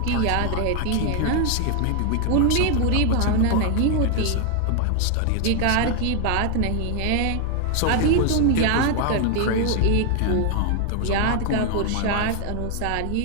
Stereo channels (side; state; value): both; different; correlation 0.00